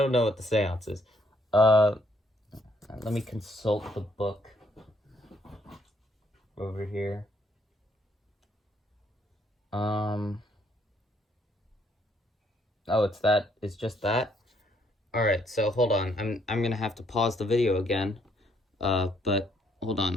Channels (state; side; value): normal; both; correlation 0.69